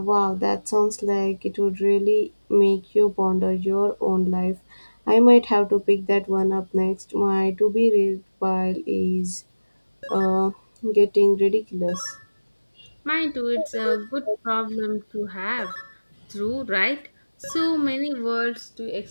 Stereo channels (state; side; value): inverted; both; correlation -1.00